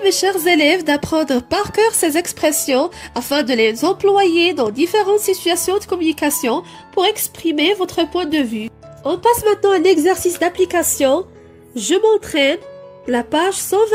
mes chers élèves, d'apprendre par cœur ces expressions afin de les employer dans différentes situations de communication pour exprimer votre point de vue. On passe maintenant à l'exercice d'application. Je m'entraîne, la page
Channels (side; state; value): both; identical; correlation 1.00